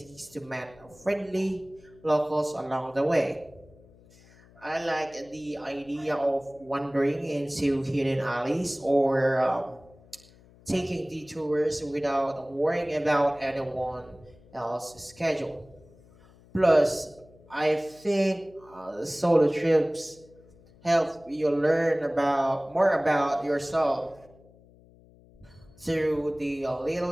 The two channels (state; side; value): noise; left; hum, 26 dB below the sound